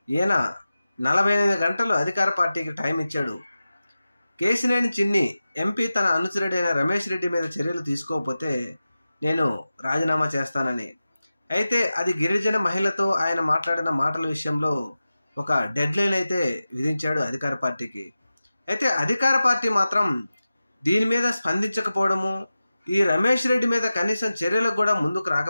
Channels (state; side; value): inverted; both; correlation -0.94